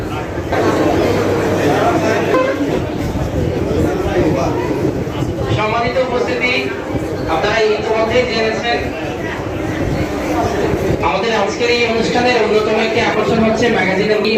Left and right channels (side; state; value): both; identical; correlation 1.00